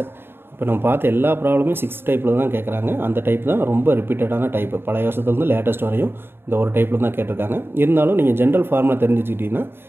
இப்போ நம்ம பார்த்த எல்லா ப்ராப்ளமே 6 டைப்பில் தான் கேட்குறாங்க அந்த டைப் தான் ரொம்ப ரிப்பீட்டடான டைப்பு பழைய வருஷத்துலேருந்து லேட்டஸ்ட் வரையும் இந்த ஒரு டைப்பில் தான் கேட்டிருக்காங்க இருந்தாலும் நீங்கள் ஜென்ரல் ஃபார்முலா தெரிஞ்சுக்கிட்டிங்கன்னா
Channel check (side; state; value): left; late; 0.11 ms